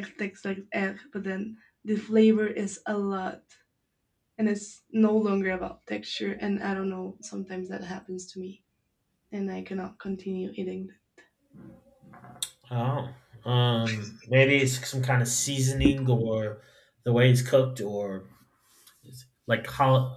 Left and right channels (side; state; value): both; identical; correlation 1.00